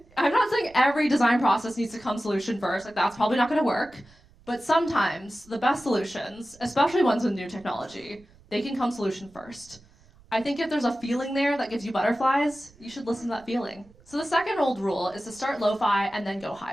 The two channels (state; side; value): noise; right; rumble, 27 dB below the sound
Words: I'm not saying every design process needs to come solution first, that's probably not going to work. But sometimes the best solutions, especially ones with new technology, they can come solution first. I think if there's a feeling there that gives you butterflies, you should listen to that feeling. So the second old rule is to start lo-fi and then go